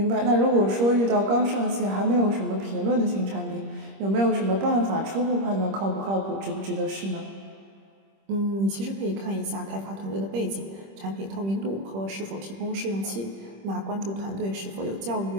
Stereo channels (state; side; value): late; left; 26 ms